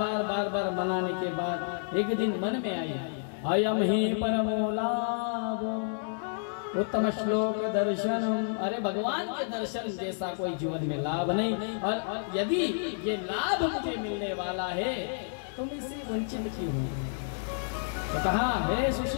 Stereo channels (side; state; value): right; silent; digital silence